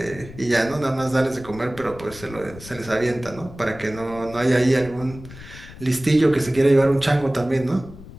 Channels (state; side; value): noise; left; rumble, 16 dB below the sound